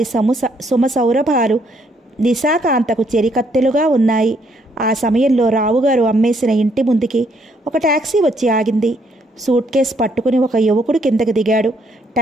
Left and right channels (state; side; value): normal; both; correlation 0.70